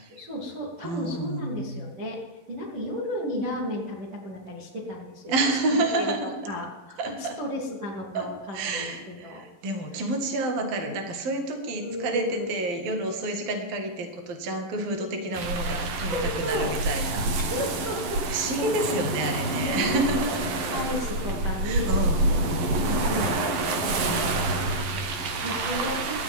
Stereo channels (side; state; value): left; late; 11 ms